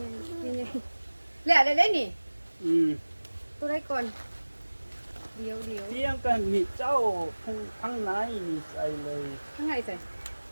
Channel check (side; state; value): both; inverted; correlation -1.00